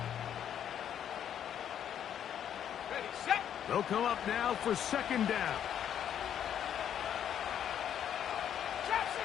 They'll come up now for 2nd down. Trap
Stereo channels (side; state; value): right; quieter; 9.5 dB